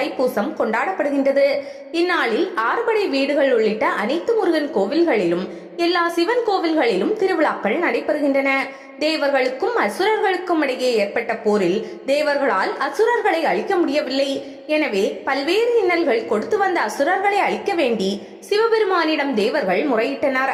கொண்டாடப்படுகின்றது. இந்நாளில் ஆறுபடை வீடுகள் உள்ளிட்ட அனைத்து முருகன் கோவில்களிலும் எல்லா சிவன் கோவில்களிலும் திருவிழாக்கள் நடைபெறுகின்றன. தேவர்களுக்கும் அசுரர்களுக்கும் இடையே ஏற்பட்ட போரில் தேவர்களால் அசுரர்களை அழிக்க முடியவில்லை. எனவே பல்வேறு இன்னல்கள் கொடுத்து வந்த அசுரர்களை அழிக்க வேண்டி சிவபெருமானிடம் தேவர்கள் முறையிட்டனர்.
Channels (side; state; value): both; identical; correlation 1.00